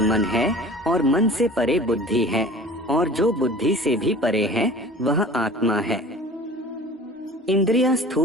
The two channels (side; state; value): both; normal; correlation 0.43